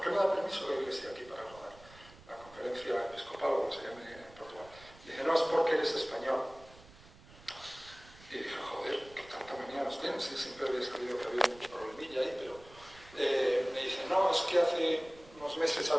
qué no da permiso la iglesia aquí para rodar? La conferencia episcopal, o como se llame en Portugal. Y dice, no, es porque eres español. Y dije, joder, qué tanta manía nos tienen. Sí, siempre había sabido que había un problemilla ahí, pero me dice, no, es que hace unos meses ha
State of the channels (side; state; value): right; noise; rumble, 22 dB below the sound